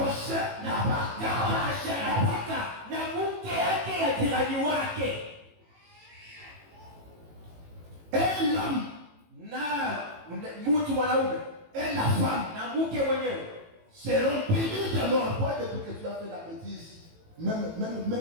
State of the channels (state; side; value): late; left; 18 ms